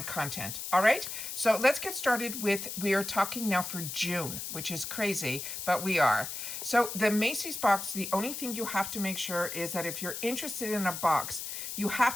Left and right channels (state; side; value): noise; left; hiss, 6 dB below the sound